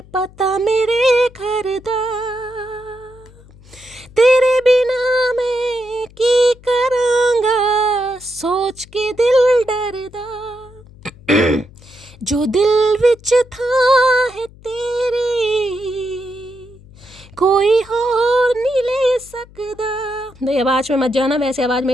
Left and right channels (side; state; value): left; noise; hum, 23 dB below the sound